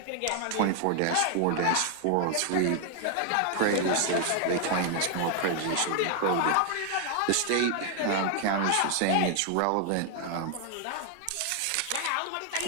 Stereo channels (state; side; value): different; both; correlation 0.00